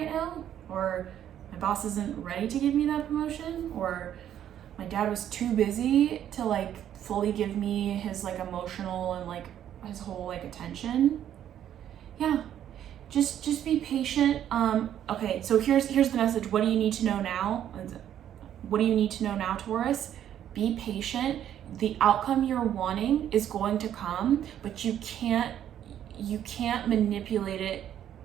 now, or my boss isn't ready to give me that promotion, or my dad was too busy to like fully give me his like emotional and like his whole like attention. Yeah, just be patient. Okay, so here's the message. What do you need to know now? What do you need to know now, Taurus? Be patient. The outcome you're wanting is going to come, but you can't manipulate it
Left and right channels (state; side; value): quieter; left; 10.5 dB